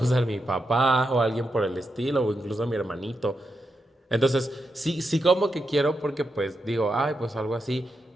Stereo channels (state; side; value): normal; both; correlation 0.86